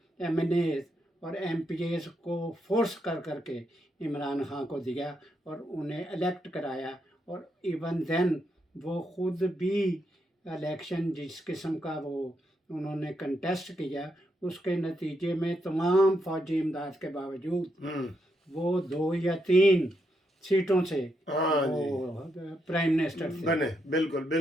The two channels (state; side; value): normal; both; correlation 0.80